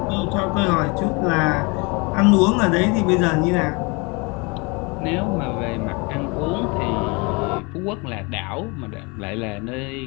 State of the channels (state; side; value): quieter; right; 29.0 dB